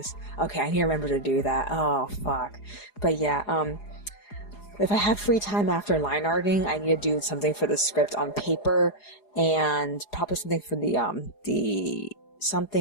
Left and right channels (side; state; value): right; late; 4.8 ms